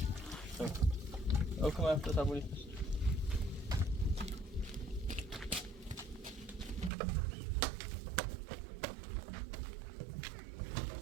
Ook kom even, dat hebben we niet.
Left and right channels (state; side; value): drops out; left; at 6.9 s